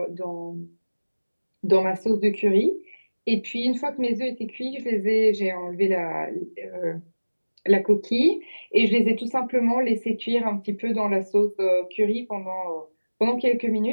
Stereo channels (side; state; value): both; inverted; correlation -1.00